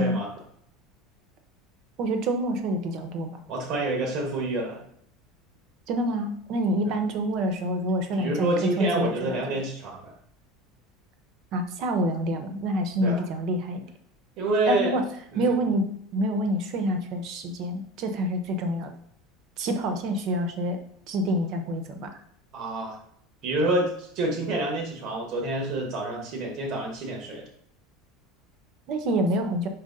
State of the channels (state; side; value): normal; both; correlation 0.33